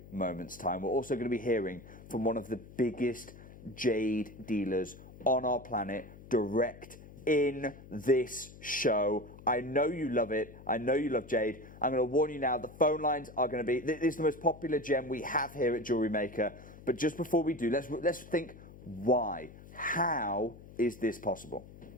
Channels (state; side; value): noise; left; hum, 18 dB below the sound